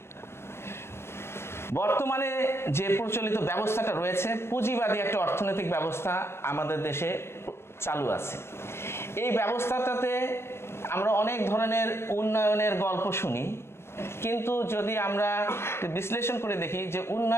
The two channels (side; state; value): right; late; 0.12 ms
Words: বর্তমানে যে প্রচলিত ব্যবস্থাটা রয়েছে, পুঁজিবাদী একটা অর্থনৈতিক ব্যবস্থা আমাদের দেশে চালু আছে। এই ব্যবস্থাটাতে আমরা অনেক ধরনের উন্নয়নের গল্প শুনি, কিন্তু যদি আমরা বিশ্লেষণ করে দেখি যে